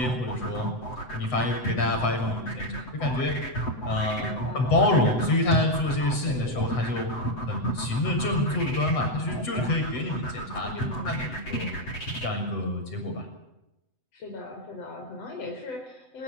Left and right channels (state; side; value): late; right; 7.9 ms